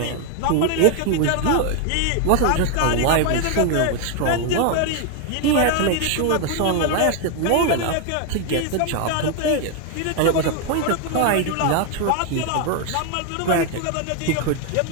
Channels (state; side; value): different; both; correlation 0.01